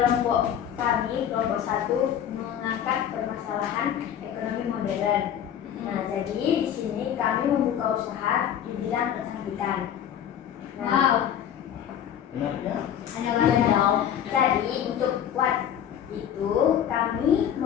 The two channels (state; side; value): quieter; right; 9.6 dB